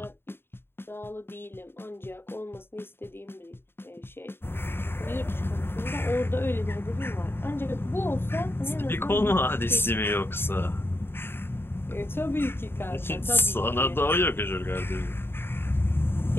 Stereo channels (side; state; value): right; late; 0.11 ms